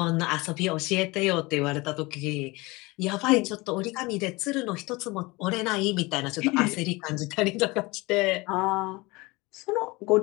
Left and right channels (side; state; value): right; quieter; 23.4 dB